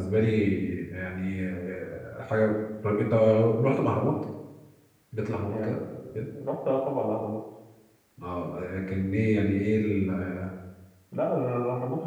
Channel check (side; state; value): both; identical; correlation 1.00